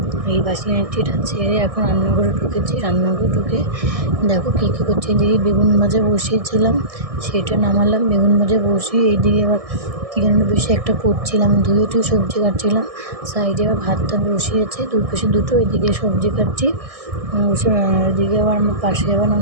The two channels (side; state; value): left; late; 1.6 ms